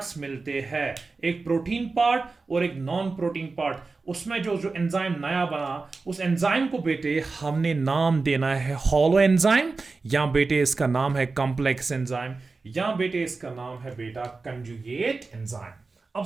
मिलते हैं, एक प्रोटीन पार्ट और एक नॉन प्रोटीन पार्ट, उसमें जो एंजाइम नया बना उस एंजाइम को बेटे हमने नाम देना है हॉलो एंजाइम, या बेटे इसका नाम है कॉम्प्लेक्स एंजाइम, या बेटे इसका नाम है बेटा कंजुगेट एंजाइम। अब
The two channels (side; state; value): left; quieter; 4.0 dB